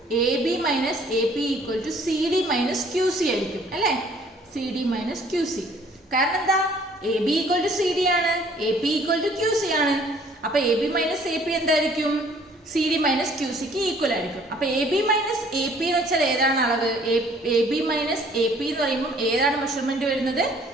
CD minus QC ആയിരിക്കും അല്ലേ? CD minus QC. കാരണം എന്താ? AB ഈക്വൽ ടു CD ആണ്, AP ഈക്വൽ ടു QC ആണ്. അപ്പൊ AB മൈനസ് AP എന്തായിരിക്കും? CD മൈനസ് QCക്ക് ഈക്വൽ ആയിരിക്കും. അപ്പൊ AB മൈനസ് AP എന്ന് വെച്ചാൽ ഏതാണ് അളവ്? AB മൈനസ് AP എന്ന് പറയുമ്പോൾ ഏതാണ് മെഷർമെന്റ് വരുന്നത്?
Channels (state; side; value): normal; both; correlation 0.58